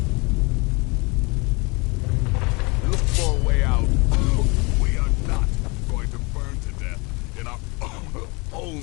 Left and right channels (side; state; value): right; quieter; 27.9 dB